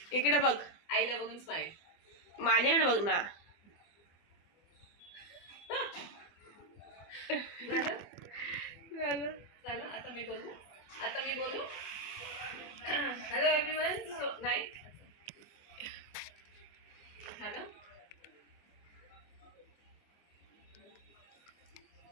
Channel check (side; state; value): right; late; 24 ms